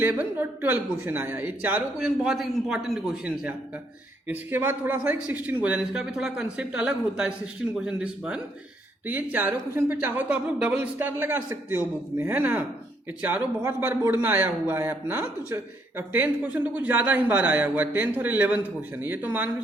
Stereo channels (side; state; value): both; normal; correlation 0.71